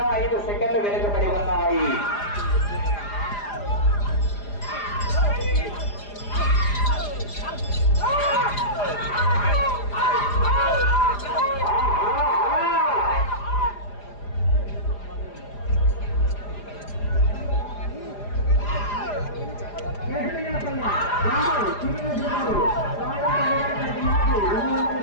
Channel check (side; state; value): right; late; 4.9 ms